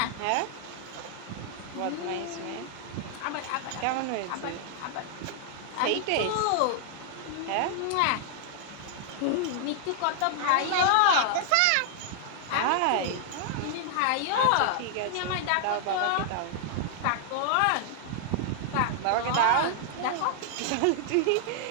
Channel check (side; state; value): both; different; correlation 0.00